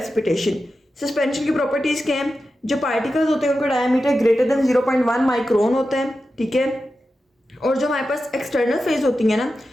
सस्पेंशन की प्रॉपर्टीज क्या हैं, जो पार्टिकल्स होते हैं उनका डायमीटर ग्रेटर देन 0.1 माइक्रोन होता है, ठीक है। और जो हमारे पास एक्सटर्नल फेज होती है ना,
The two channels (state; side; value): normal; both; correlation 0.91